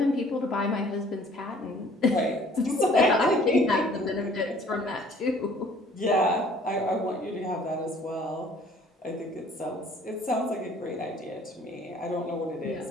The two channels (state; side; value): normal; both; correlation 0.55